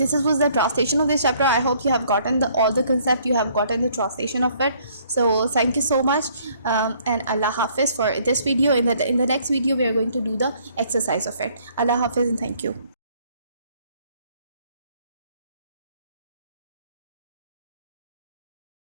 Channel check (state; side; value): inverted; both; correlation -0.63